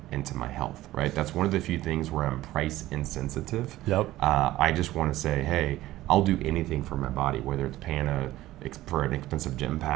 into my health, right? That's one of the few things where I'm price insensitive. Yep. I just want to say, hey, I'll do anything for my body, whether it's paying for an expensive gym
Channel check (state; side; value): quieter; left; 15.9 dB